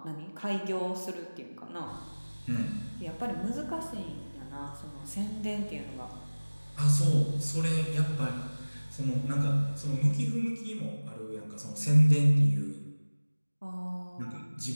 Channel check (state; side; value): inverted; both; correlation -1.00